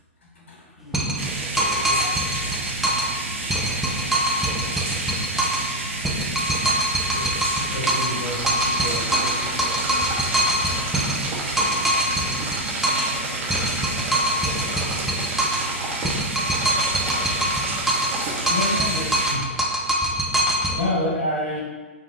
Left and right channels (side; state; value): both; normal; correlation 0.10